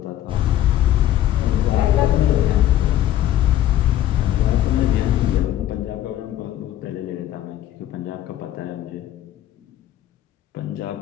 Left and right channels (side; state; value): right; quieter; 12.6 dB